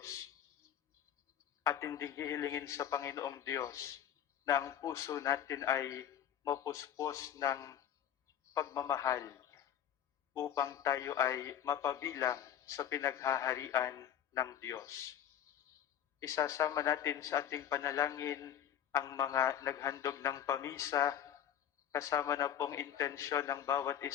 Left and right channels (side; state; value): right; quieter; 10.2 dB